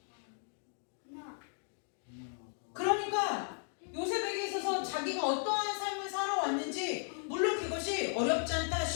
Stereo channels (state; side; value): silent; right; 54 dB below the other